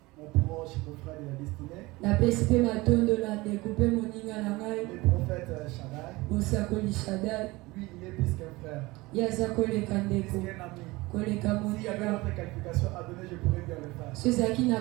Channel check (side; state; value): left; quieter; 21.6 dB